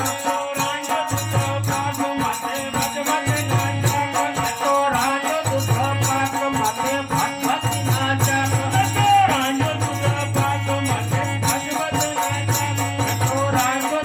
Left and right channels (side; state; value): both; identical; correlation 1.00